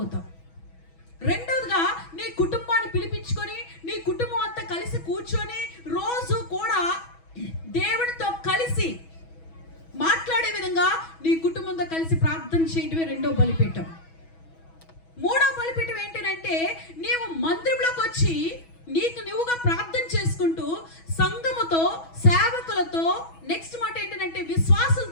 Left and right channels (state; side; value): late; right; 6.1 ms